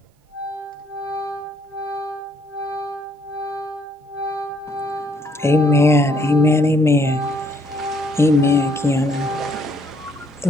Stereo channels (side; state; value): both; normal; correlation 0.68